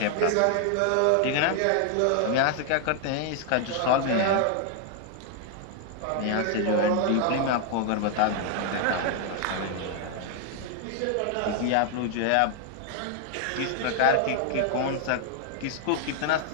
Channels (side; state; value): both; different; correlation 0.00